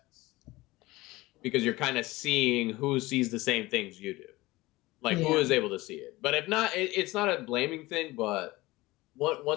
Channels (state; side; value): quieter; right; 20.0 dB